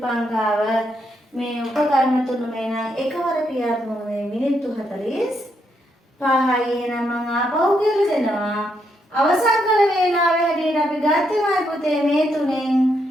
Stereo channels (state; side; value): normal; both; correlation 0.78